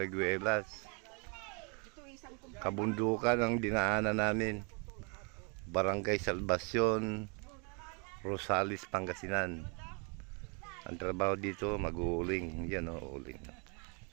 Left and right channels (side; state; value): left; quieter; 35.3 dB